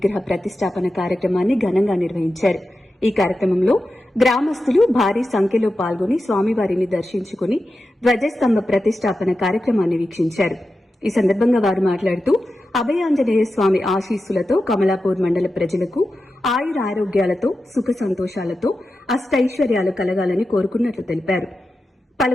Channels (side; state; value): both; normal; correlation 0.91